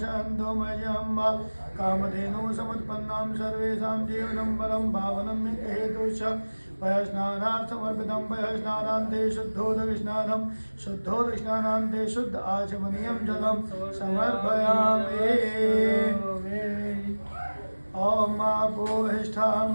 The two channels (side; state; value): both; inverted; correlation -1.00